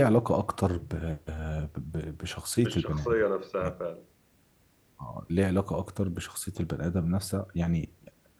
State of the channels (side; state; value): both; identical; correlation 1.00